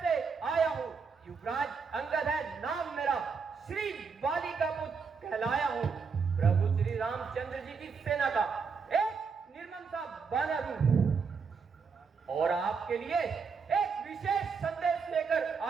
से आया हूँ। युवराज अंगद है नाम मेरा, श्री बाली का पुत्र कहलाया हूँ। प्रभु श्री रामचंद्र जी की सेना का एक निर्मम सा बानर हूँ और आपके लिए एक विशेष संदेश लेकर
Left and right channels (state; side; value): quieter; left; 5.4 dB